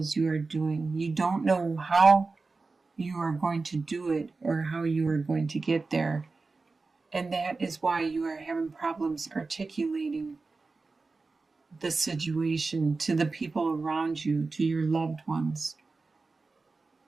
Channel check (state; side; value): quieter; left; 3.9 dB